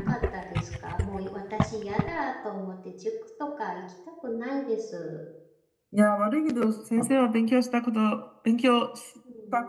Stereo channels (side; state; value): both; identical; correlation 1.00